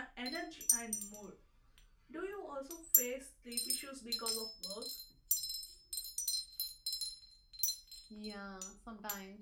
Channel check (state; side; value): identical; both; correlation 1.00